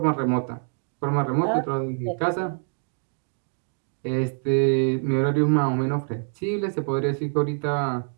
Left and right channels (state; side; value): silent; left; 60 dB below the other